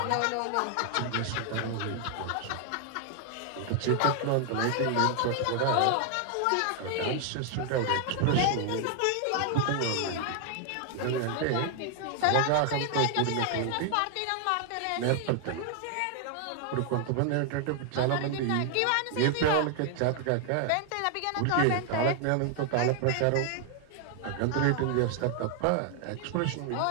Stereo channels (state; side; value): different; both; correlation 0.00